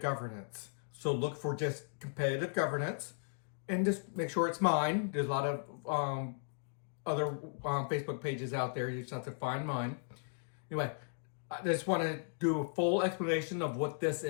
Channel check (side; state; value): right; silent; digital silence